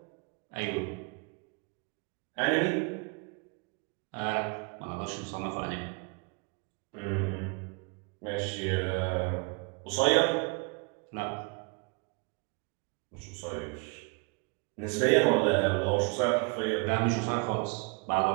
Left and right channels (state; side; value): quieter; left; 32.4 dB